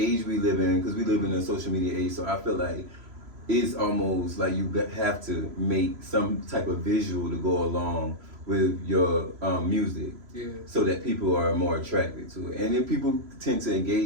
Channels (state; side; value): late; left; 3.0 ms